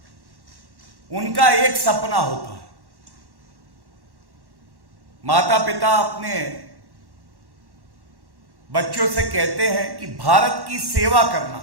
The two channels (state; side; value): late; left; 1.1 ms